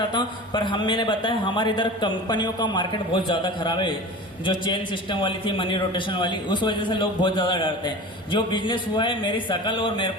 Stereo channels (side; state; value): both; normal; correlation 0.35